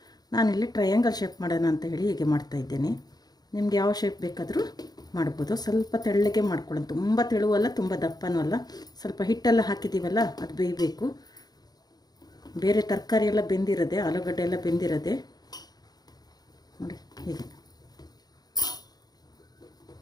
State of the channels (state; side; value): late; right; 0.19 ms